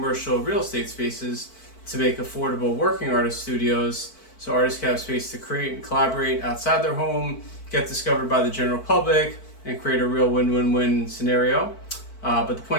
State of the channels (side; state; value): right; late; 4.5 ms